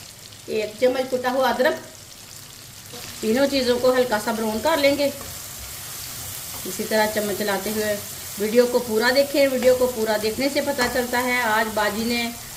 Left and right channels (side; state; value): both; identical; correlation 1.00